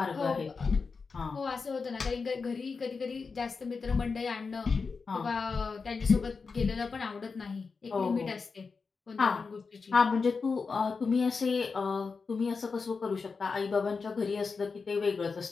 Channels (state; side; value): quieter; right; 4.8 dB